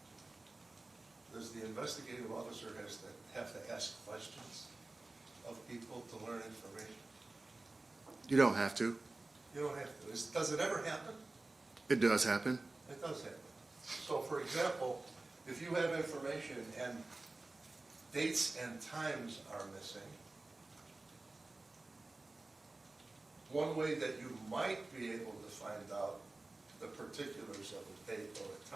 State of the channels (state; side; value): quieter; left; 3.1 dB